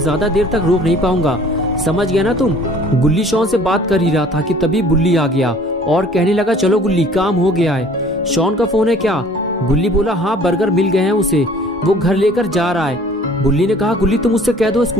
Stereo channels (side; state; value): both; normal; correlation 0.52